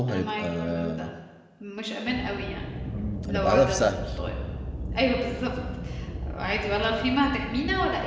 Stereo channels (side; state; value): both; identical; correlation 1.00